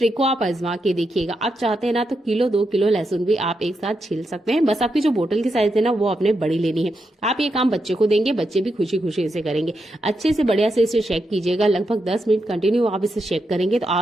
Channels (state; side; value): normal; both; correlation 0.84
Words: को आप आजमा के देखिएगा। आप चाहते हैं ना तो किलो 2 किलो लहसुन भी आप एक साथ छिल सकते हैं। बस आपकी जो बोतल की साइज है ना वो आपने बड़ी लेनी है। आप ये काम बच्चे को देंगे, बच्चे भी खुशी खुशी इसे करेंगे। अच्छे से बढ़िया से इसे शेक कीजिएगा। लगभग 10 मिनट कंटिन्यू आप इसे शेक करेंगे तो